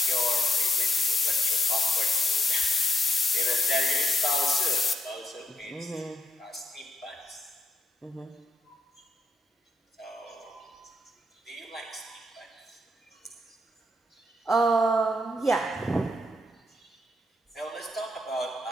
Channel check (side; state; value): both; normal; correlation 0.80